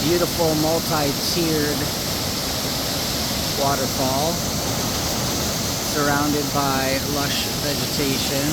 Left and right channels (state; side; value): identical; both; correlation 1.00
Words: beautiful multi-tiered waterfall surrounded by lush vegetation.